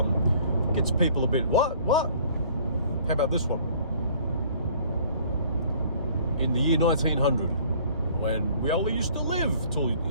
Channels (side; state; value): both; inverted; correlation -0.55